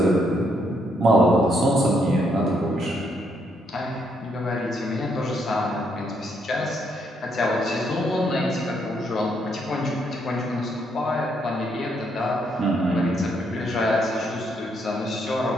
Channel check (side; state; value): both; normal; correlation 0.74